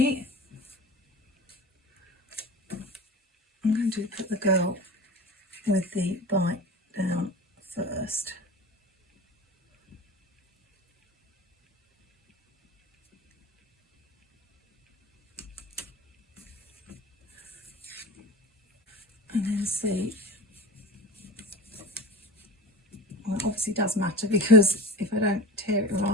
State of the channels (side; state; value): both; normal; correlation 0.32